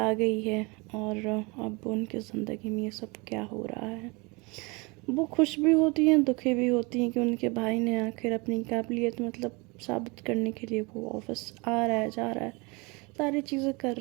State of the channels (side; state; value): left; quieter; 27.6 dB